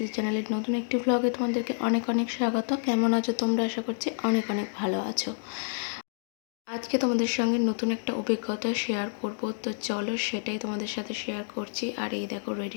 চ্যানেলের নতুন একটি ব্লগে তোমাদেরকে অনেক অনেক স্বাগত। কেমন আছো তোমরা? আশা করছি অনেক অনেক ভালো আছো। আজকে তোমাদের সঙ্গে নতুন একটা অভিজ্ঞতা শেয়ার করব, তো চলো সেটাই তোমাদের সাথে শেয়ার করছি। আর এই দেখো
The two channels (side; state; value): right; silent; digital silence